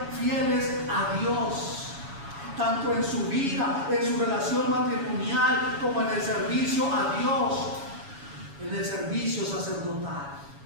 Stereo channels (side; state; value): left; late; 7.2 ms